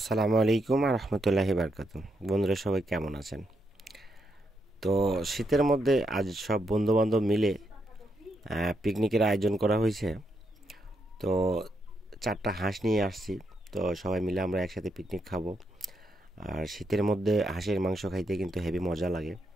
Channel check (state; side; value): normal; both; correlation 0.80